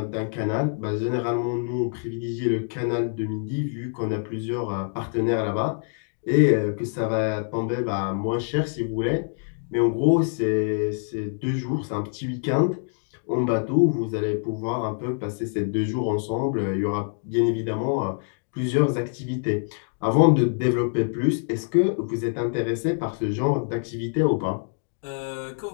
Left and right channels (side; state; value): right; silent; 61 dB below the other